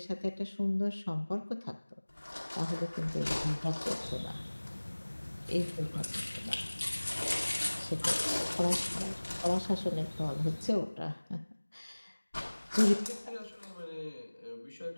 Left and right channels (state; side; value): inverted; both; correlation -1.00